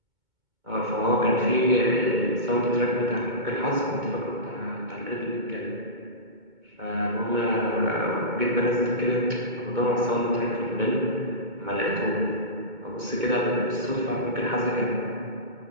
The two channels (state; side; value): late; left; 2.2 ms